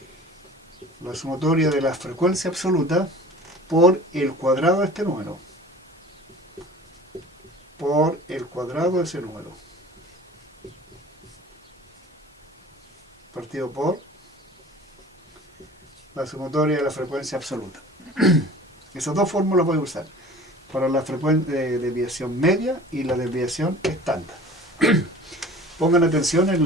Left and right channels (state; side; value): normal; both; correlation 0.43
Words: la sumatoria de la frecuencia absoluta por el cuadrado de este número. Por el cuadrado de ese número. Partido por la sumatoria de la frecuencia absoluta. Esas dos fórmulas voy a usar para la desviación media y la desviación estándar. Pongan atención